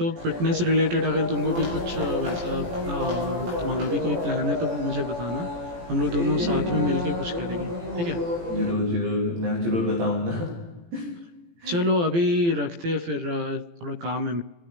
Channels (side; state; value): left; late; 17 ms